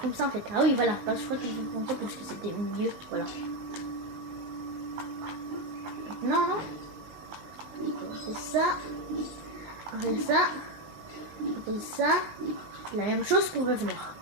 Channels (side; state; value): left; late; 19 ms